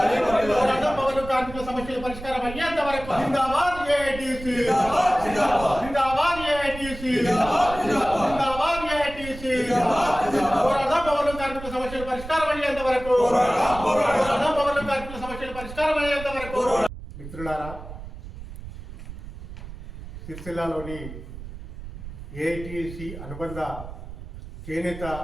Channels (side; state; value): right; noise; rumble, 12 dB below the sound